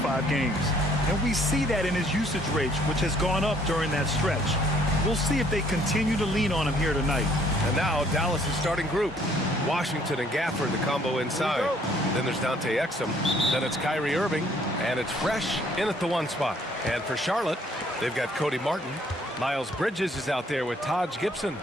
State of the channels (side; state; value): both; normal; correlation 0.62